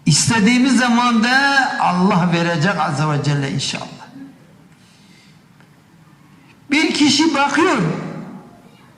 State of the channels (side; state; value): both; identical; correlation 1.00